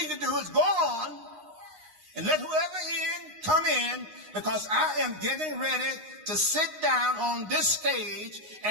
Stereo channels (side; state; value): left; late; 9.6 ms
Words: to do is go on and let whoever come in, because I am getting ready to sit down on this stage